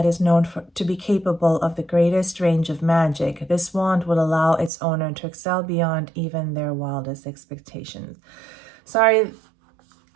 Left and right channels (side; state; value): left; drops out; at 4.7 s